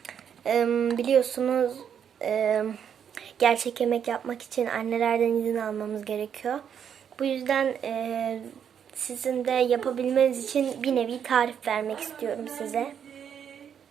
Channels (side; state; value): left; quieter; 8.2 dB